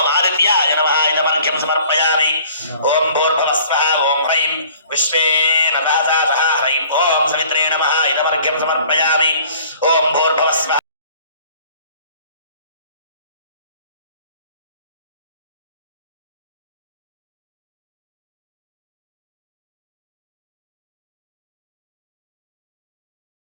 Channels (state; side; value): inverted; both; correlation -0.52